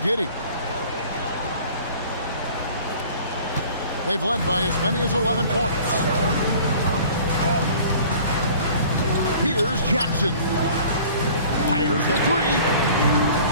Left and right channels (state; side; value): inverted; both; correlation -0.48